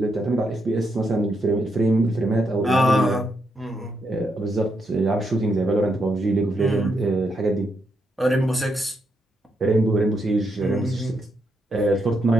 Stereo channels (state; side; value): normal; both; correlation 0.80